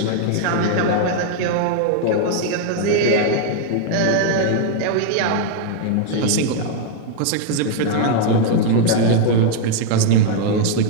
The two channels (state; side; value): different; both; correlation 0.00